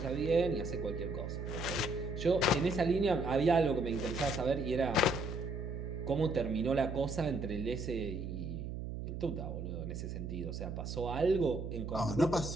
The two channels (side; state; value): right; noise; hum, 6 dB below the sound